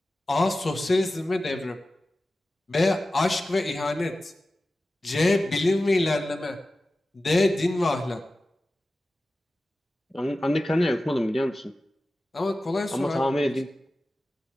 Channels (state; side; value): normal; both; correlation 0.95